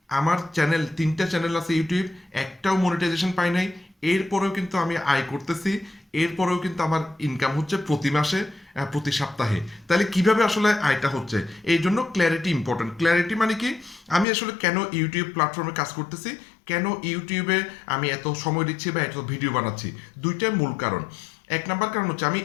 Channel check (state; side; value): drops out; right; at 14.2 s